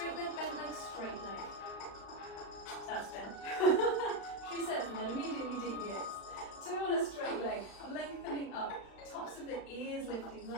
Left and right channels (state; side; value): late; right; 35 ms